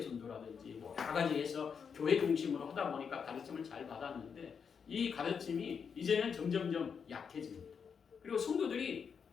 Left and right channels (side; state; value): right; quieter; 6.5 dB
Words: 전도라든지 뭐 여러 가지 해서 교회 중심으로 하다 보니까 가르침을 잘 받았는데 이 가르침이 이제는 점점점 약해집니다. 그리고 성도들이